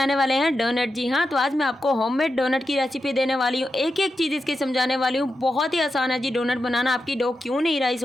वाले हैं डोनट। जी हाँ, तो आज मैं आपको होममेड डोनट की रेसिपी देने वाली हूँ। एक एक चीज़ इसकी समझाने वाली हूँ। बहुत ही आसान है जी डोनट बनाना। आपकी डो क्यों नहीं राइस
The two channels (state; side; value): normal; both; correlation 0.89